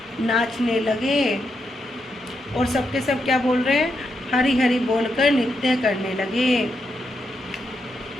नाचने लगे, और सबके सब क्या बोल रहे हैं, हरि हरि बोलकर नृत्य करने लगे।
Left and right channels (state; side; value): normal; both; correlation 0.82